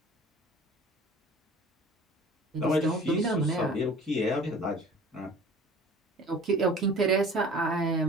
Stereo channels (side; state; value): both; normal; correlation 0.44